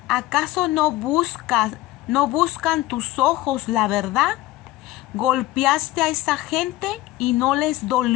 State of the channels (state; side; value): quieter; right; 16.9 dB